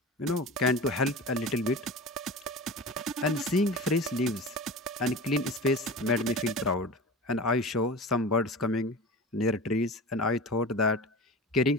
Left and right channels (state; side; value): normal; both; correlation 0.33